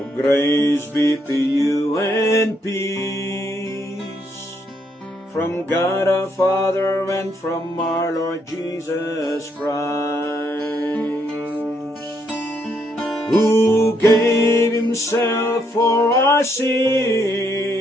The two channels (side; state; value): both; normal; correlation 0.74